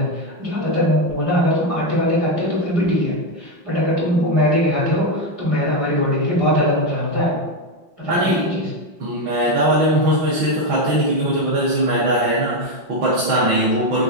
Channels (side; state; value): left; late; 5.6 ms